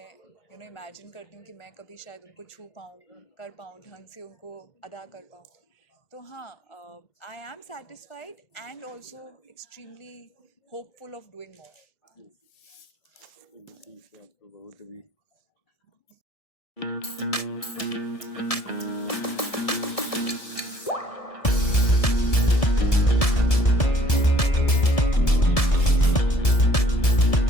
इमेजिन करती हूँ कि मैं कभी शायद उनको छू पाऊँ, कर पाऊँ, ढंग से उनको अदा कर पाऊँ. तो हाँ, I am satisfied and also extremely hopeful of doing more. आपको बहुत भी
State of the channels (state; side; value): late; right; 1.7 ms